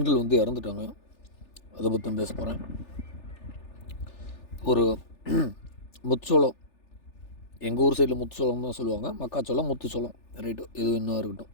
இறந்துட்டாங்க. அதை பற்றி பேச போகிறேன். ஒரு முத்துச்சோளம், எங்கள் ஊர் சைடில் முத்துச்சோளம் தான் சொல்லுவாங்க, மக்காச்சோளம் முத்துச்சோளம் ரைட்டு, எது இன்னும் இருக்கட்டும்.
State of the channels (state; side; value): late; right; 3.4 ms